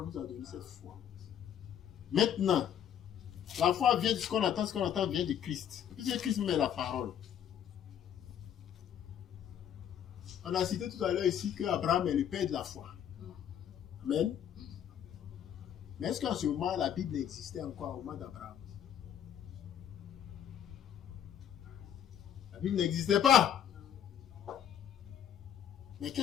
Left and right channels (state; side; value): quieter; right; 9.4 dB